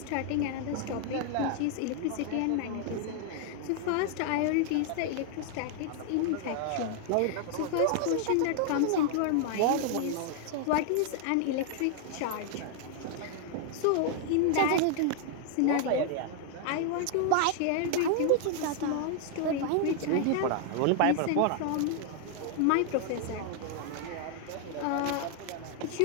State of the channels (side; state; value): both; different; correlation 0.00